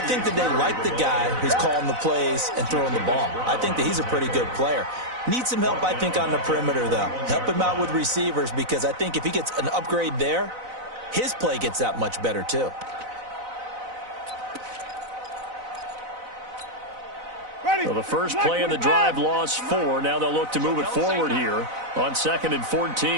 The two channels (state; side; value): late; left; 4.0 ms